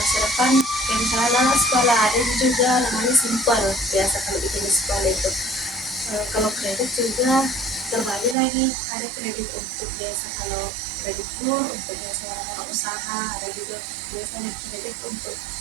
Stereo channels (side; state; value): left; drops out; at 8.3 s